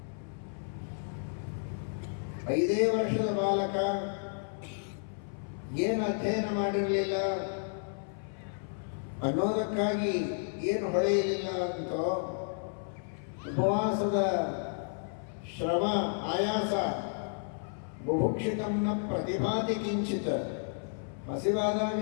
5 ವರ್ಷದ ಬಾಲಕ, ಏನು ಅಧ್ಯಯನ ಮಾಡಿರಲಿಲ್ಲ, ಅನ್ನೋದಕ್ಕಾಗಿ ಏನು ಹೊಳೆಯಲಿಲ್ಲ ಅಂತೋ ಉಪವಾಸದ ಶ್ರಮ ಆಯಾಸ ಬುಭುಕ್ಷಿತಂನ ಪ್ರತಿಭಾತಿ ಕಿಂಚಿತ, ಹಸಿವಾದಾಗ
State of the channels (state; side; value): silent; right; 56 dB below the other